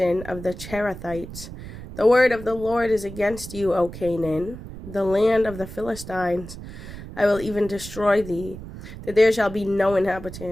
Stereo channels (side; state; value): right; noise; rumble, 12 dB below the sound